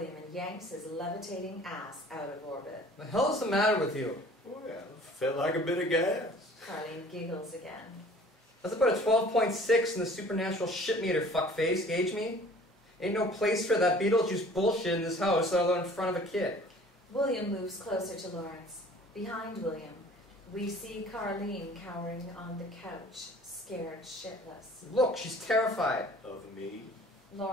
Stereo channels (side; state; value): both; normal; correlation 0.50